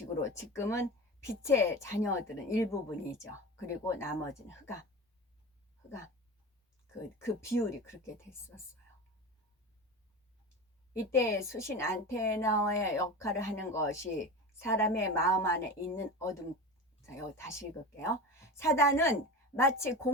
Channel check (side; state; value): both; normal; correlation 0.28